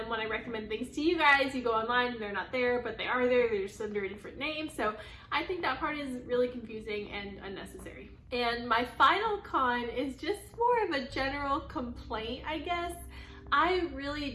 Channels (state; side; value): identical; both; correlation 1.00